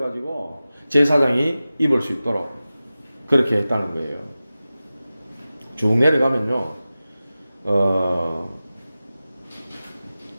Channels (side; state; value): both; inverted; correlation -0.95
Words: 제사장이 입을 수 있도록 그렇게 했다는 거예요. 쭉 내려가면요.